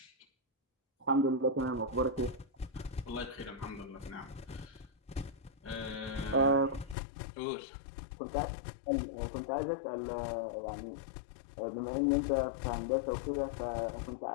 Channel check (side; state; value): right; drops out; at 7.0 s